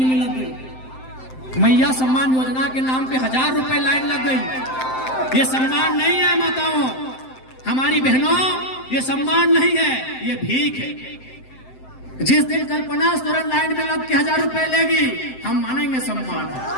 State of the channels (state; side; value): late; right; 7.7 ms